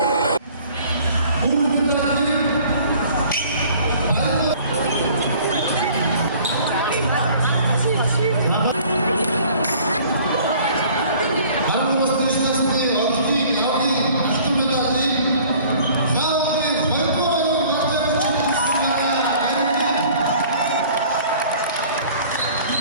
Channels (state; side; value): inverted; both; correlation -0.52